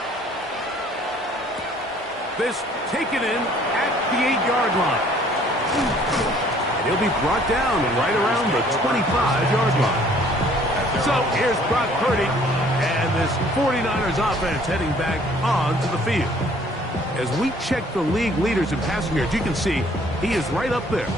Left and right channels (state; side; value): normal; both; correlation 0.58